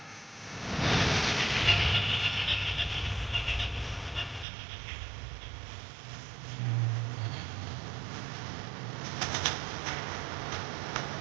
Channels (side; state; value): left; drops out; at 4.5 s